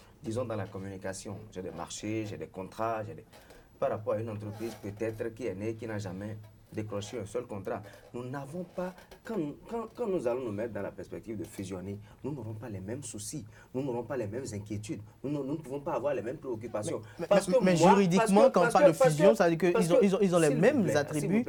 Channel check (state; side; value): identical; both; correlation 1.00